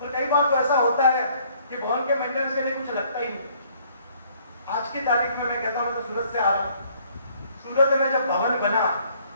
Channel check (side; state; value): both; inverted; correlation -0.62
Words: और कई बार तो ऐसा होता है कि भवन के मेंटेनेंस के लिए कुछ लगता ही नहीं। आज की तारीख में मैं कहता हूँ, तो सूरत से आ रहा हूँ, सूरत में जब भवन बना